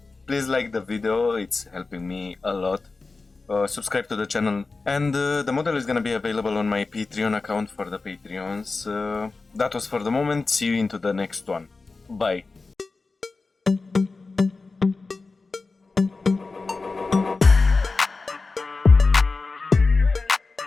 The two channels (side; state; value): right; quieter; 3.9 dB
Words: Please like the video, it's helping me a lot. Subscribe to the channel, and the model is gonna be available on my Patreon account for the Patreons. That was for the moment. See you into the next one. Bye.